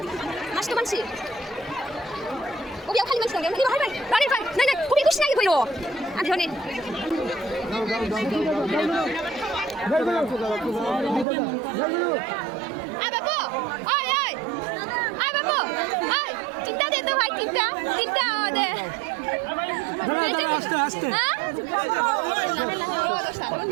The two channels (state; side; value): drops out; left; at 11.2 s